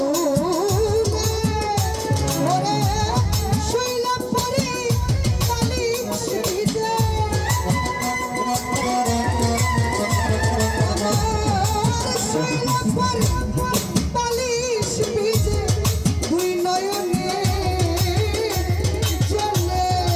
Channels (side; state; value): both; identical; correlation 1.00